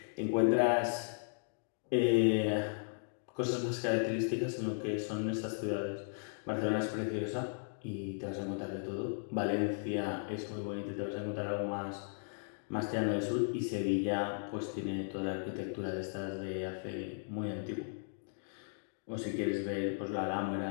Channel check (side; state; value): right; silent; digital silence